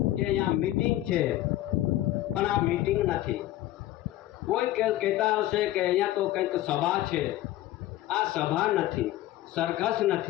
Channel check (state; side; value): quieter; right; 14.9 dB